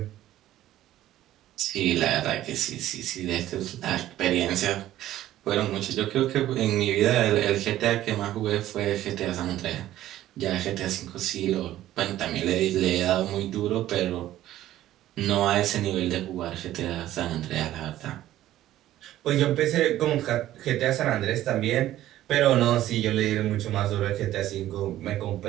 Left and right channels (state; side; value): quieter; left; 13.7 dB